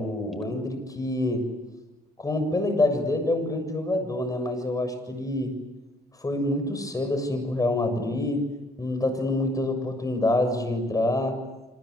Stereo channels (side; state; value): both; normal; correlation 0.64